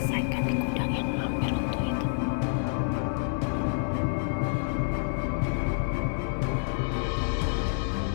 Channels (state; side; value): silent; right; digital silence